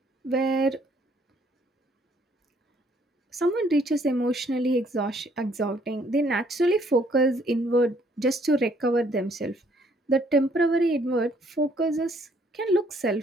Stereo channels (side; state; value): both; normal; correlation 0.65